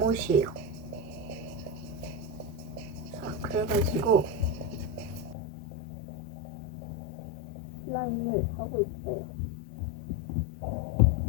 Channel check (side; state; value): right; drops out; at 5.4 s